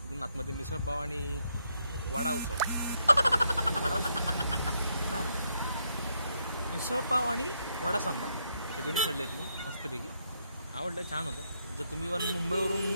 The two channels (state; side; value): inverted; both; correlation -0.77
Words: तिथून आतमध्ये मिसळपाव आणि वडा उसळ. मिसळपाव आणि वडा सांबार हे दोन्ही खाल्ले आहेत मी मस्तपैकी. आवडलं, छान होतं. जर तुम्ही